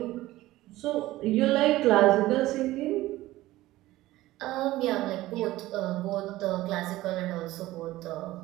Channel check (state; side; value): quieter; left; 16.9 dB